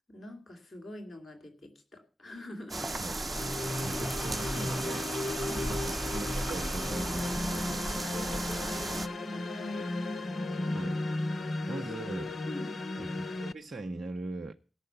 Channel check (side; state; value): both; normal; correlation 0.90